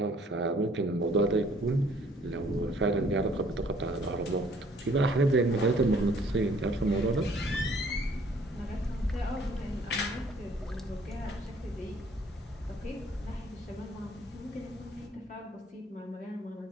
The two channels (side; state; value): both; normal; correlation 0.59